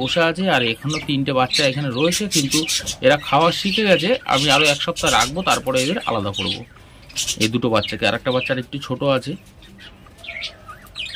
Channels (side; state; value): both; identical; correlation 1.00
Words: বসে আছে, আর এখনও 3টে বাচ্চা এখানে রয়েছে। কিন্তু এরা খাওয়া শিখে গেছে, আমি আরও 1 সপ্তাহ রাখবো, তারপরে এদের আলাদা করব এই 2টো বাচ্চাকে। আর একটা বাচ্চার একটু ছোট আছে।